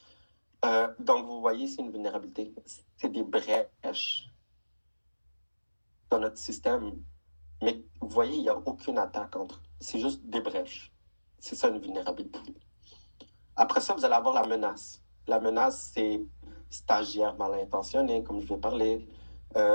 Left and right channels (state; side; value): inverted; both; correlation -1.00